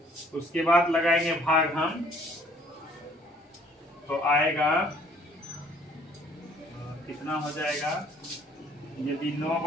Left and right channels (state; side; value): normal; both; correlation 0.59